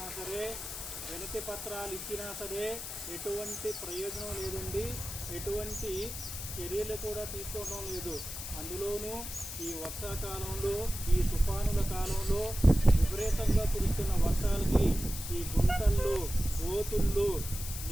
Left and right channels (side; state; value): left; noise; hiss, 8 dB below the sound